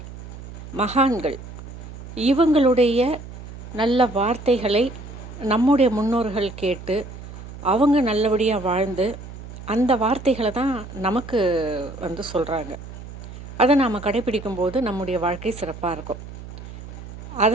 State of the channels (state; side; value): noise; right; hum, 13 dB below the sound